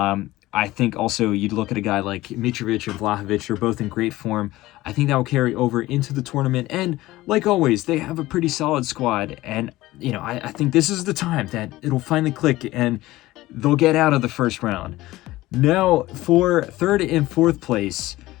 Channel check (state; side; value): quieter; right; 17.6 dB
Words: I think also you'd look at a guy like Mitrovic and Vlahovic. They're both in great form. I think that will carry over into the tournament. And like always, they have a pretty solid squad. And, I think this is the time that it'll finally click and they'll get out of the first round. Now, for third and fourth place,